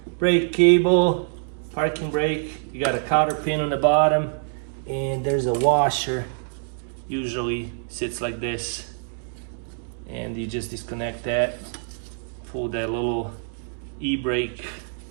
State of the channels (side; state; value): left; silent; digital silence